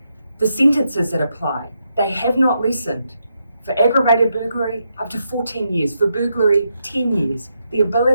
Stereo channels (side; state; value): both; inverted; correlation -0.82